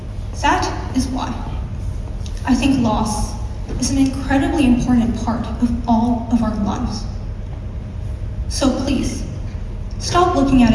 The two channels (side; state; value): both; identical; correlation 1.00